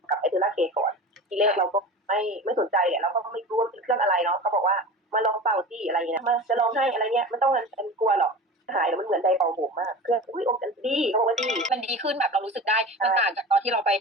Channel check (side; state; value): both; normal; correlation 0.32